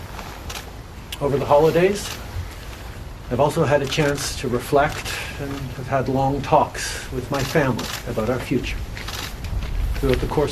Over the holidays, I've also had a chance to reflect and have had long talks with my family about our future. Throughout the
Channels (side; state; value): both; identical; correlation 1.00